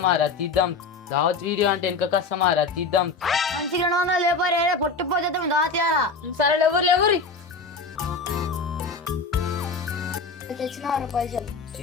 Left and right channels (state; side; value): quieter; right; 4.1 dB